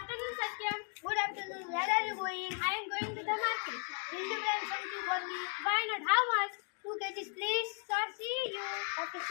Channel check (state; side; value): quieter; right; 37.4 dB